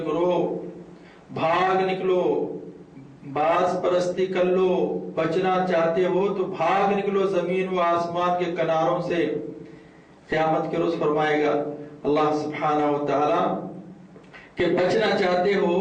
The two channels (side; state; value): both; identical; correlation 1.00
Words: گروہ، بھاگ نکلو، باز پرستی کر لو، بچنا چاہتے ہو تو بھاگ نکلو زمین و آسمان کے کناروں سے. قیامت کے روز فرمائے گا اللہ سبحانہ و تعالی کہ بچنا چاہتے ہو